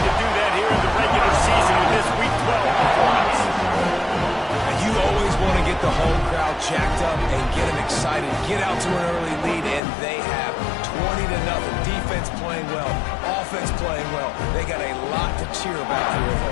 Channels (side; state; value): right; drops out; at 9.8 s